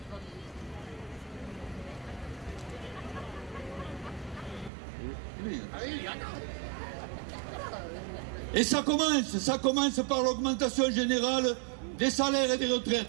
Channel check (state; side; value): drops out; left; at 4.7 s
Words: Et ça commence par l'augmentation générale des salaires et des